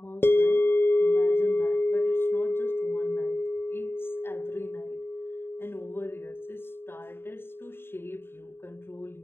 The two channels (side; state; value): right; late; 0.11 ms